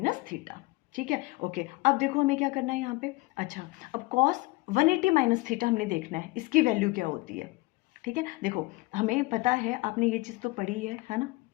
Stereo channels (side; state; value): right; quieter; 22.3 dB